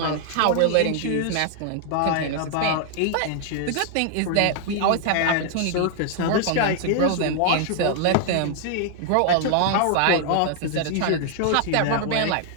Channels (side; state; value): both; different; correlation 0.00